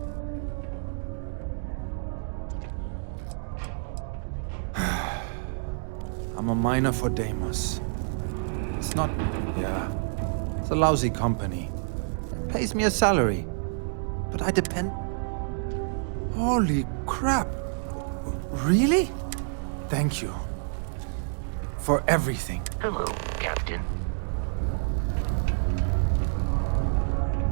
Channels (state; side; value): silent; left; digital silence